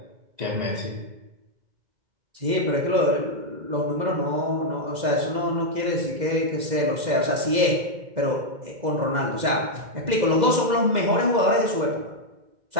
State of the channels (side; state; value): left; late; 2.0 ms